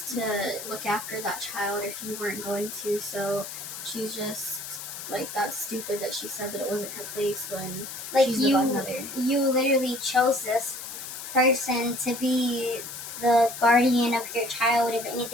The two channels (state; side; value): noise; left; hiss, 9 dB below the sound